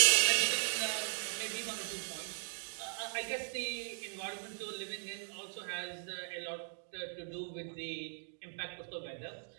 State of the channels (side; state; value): left; silent; digital silence